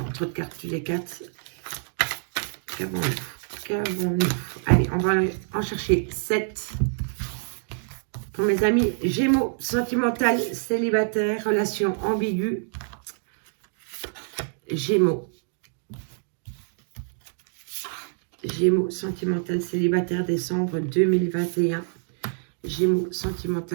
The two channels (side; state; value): left; silent; digital silence